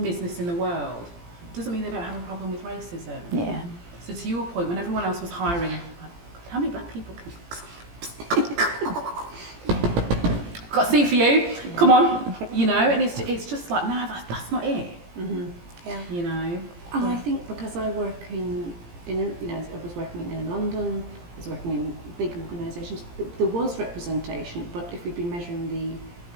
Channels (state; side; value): late; left; 17 ms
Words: business in the world, doesn't mean they don't have a problem with racism. Yeah. So to your point, when everyone else was hiring, like, how many black people can... got a seat for you, come on, you know, and it's just like, no, that's not it. You know. And I think because I work in you know, I was working in London, I was working in big organisations, there was representation, but if we'd been measuring the